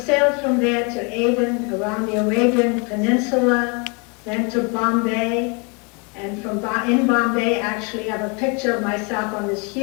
from there to Aden, around the Arabian Peninsula, then to Bombay. And in Bombay, actually, I have a picture of myself on this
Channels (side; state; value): right; quieter; 33.1 dB